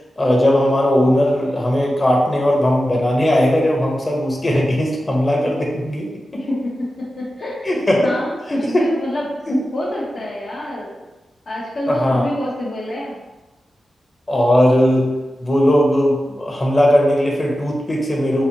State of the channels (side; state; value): both; normal; correlation 0.93